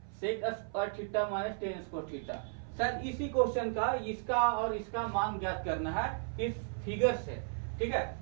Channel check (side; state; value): left; silent; 55 dB below the other